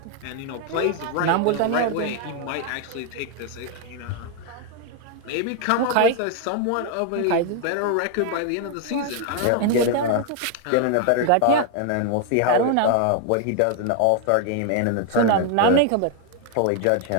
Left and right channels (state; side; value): different; both; correlation 0.00